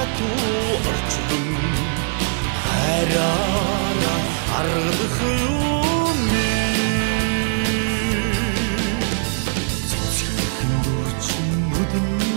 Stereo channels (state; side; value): silent; left; digital silence